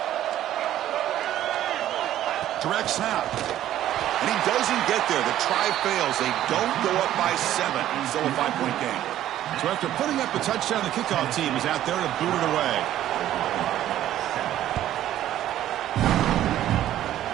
Direct snap. And he doesn't get there. The try fails. They don't go up by 7. Still a 5-point game. So after putting up a touchdown, the kickoff team is out there to boot it away.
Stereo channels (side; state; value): left; quieter; 12.5 dB